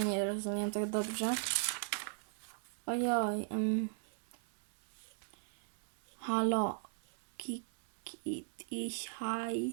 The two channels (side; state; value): left; silent; 52 dB below the other